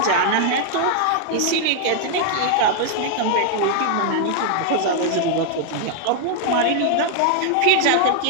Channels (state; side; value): different; both; correlation -0.01